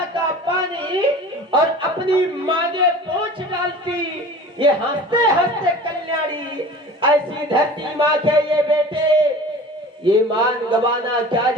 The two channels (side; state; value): both; normal; correlation 0.41